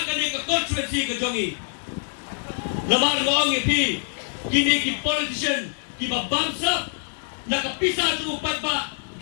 ka ne ka constituency ka jongi namar ngong yapi kini ki politician ki ba bangsa nakapisa su upay ba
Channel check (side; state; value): right; silent; 62 dB below the other